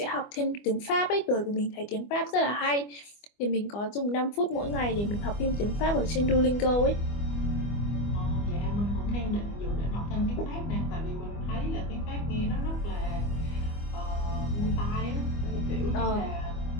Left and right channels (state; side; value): late; right; 25 ms